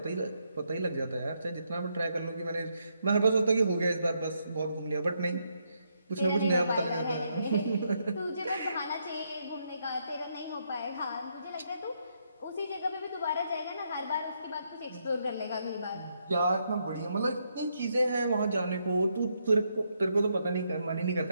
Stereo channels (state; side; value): inverted; both; correlation -0.77